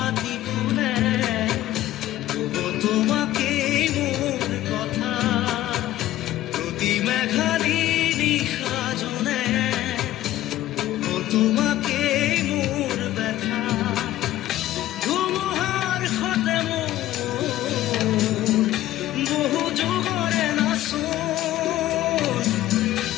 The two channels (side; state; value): right; quieter; 14.5 dB